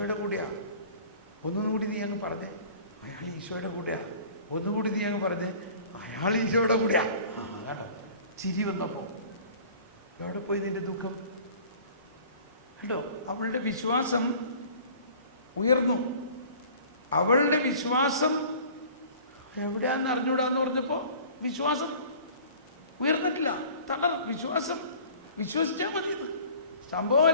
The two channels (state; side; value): inverted; both; correlation -0.47